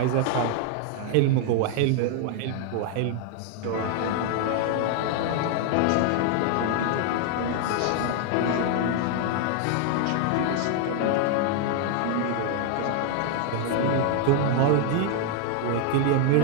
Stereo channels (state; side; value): different; both; correlation 0.00